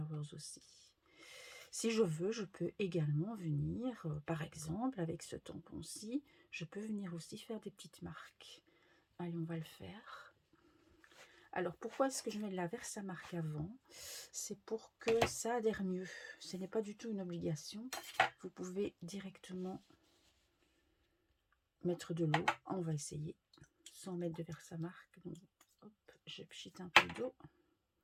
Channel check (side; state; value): both; identical; correlation 1.00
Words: aussi. Si je veux, je peux également venir, par exemple, avec ce tampon-ci, je peux venir aussi faire des petites marques. Allez, on va le faire. Alors, pourquoi est-ce que je mets de la Versamark avant? C'est pour que ça adhère mieux. Ce n'est pas du tout une obligation. Vous pouvez directement mettre de l'eau. On va essayer sans mettre de Versamark. Donc, hop, je pchite un peu d'eau.